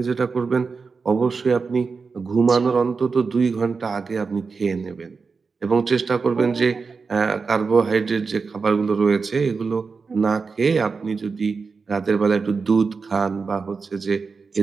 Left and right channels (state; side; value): quieter; left; 4.8 dB